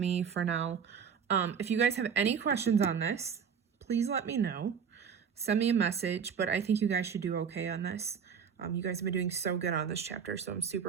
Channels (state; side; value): quieter; left; 7.0 dB